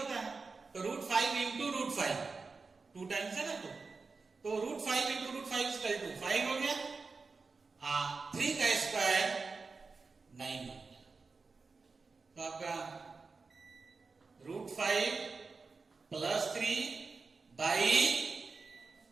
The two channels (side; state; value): left; quieter; 4.3 dB